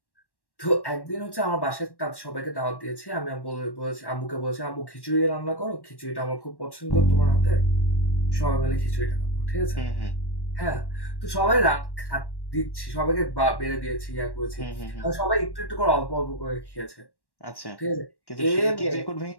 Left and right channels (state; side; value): late; right; 1.1 ms